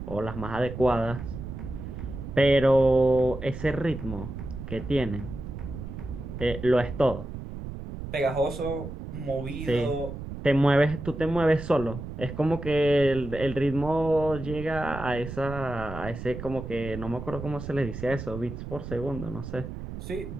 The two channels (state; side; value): noise; right; rumble, 9 dB below the sound